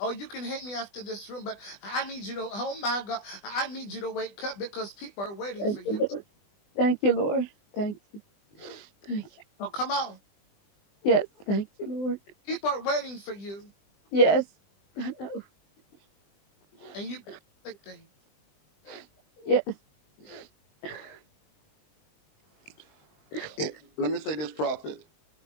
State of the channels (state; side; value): late; right; 20 ms